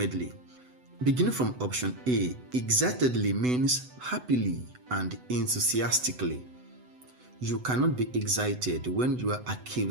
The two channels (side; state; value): left; late; 8.0 ms